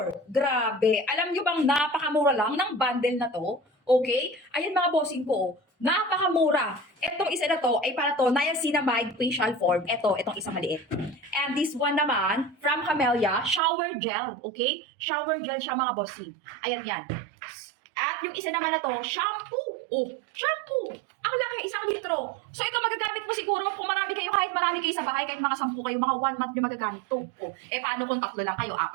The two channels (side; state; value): left; drops out; at 13.6 s